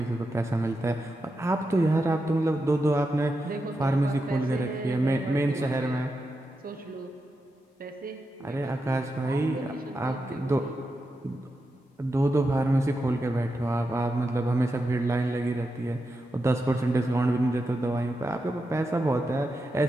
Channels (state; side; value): normal; both; correlation 0.88